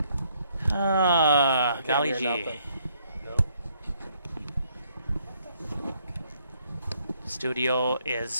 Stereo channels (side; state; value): both; inverted; correlation -0.69